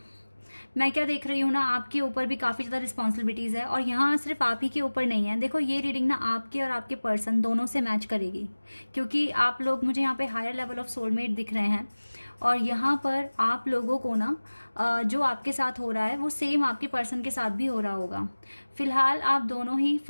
मैं क्या देख रही हूँ ना, आपके ऊपर भी काफ़ी ज़्यादा रिस्पॉन्सिबिलिटीज़ है और यहाँ सिर्फ आप ही के ऊपर नहीं है। देखो, ये रीडिंग ना आपके और आपके पर्सन दोनों से मैच करेगी, क्योंकि आप लोग, मुझे यहाँ पे हायर लेवल ऑफ सोलमेट दिख रहे हैं और यहाँ पर आप लोगों को ना जो आपके साथ हो रहा है वो सेम आपके पर्सन के साथ भी हो रहा होगा। फिलहाल आप दोनों ही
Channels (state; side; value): inverted; both; correlation -1.00